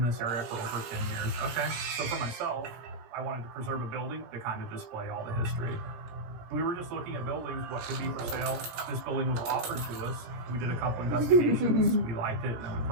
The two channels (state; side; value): late; left; 17 ms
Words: this area for over 10 years. Okay. So for myself, I wanted to preserve a building to kind of display all the history. We were just looking at buildings, what could be for sale. This building was offered to us. We did a couple investigations. We liked it, and then we